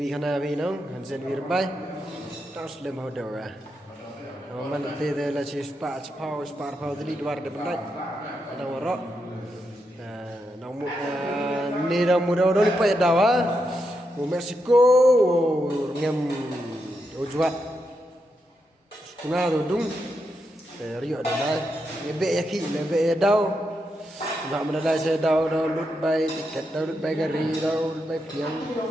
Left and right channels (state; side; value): normal; both; correlation 0.84